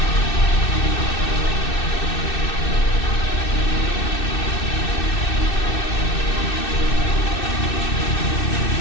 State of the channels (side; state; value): right; late; 2.6 ms